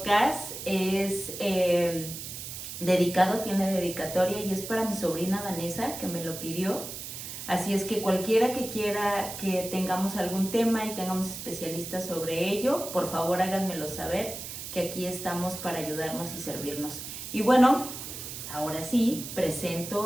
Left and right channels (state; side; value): noise; right; hiss, 9 dB below the sound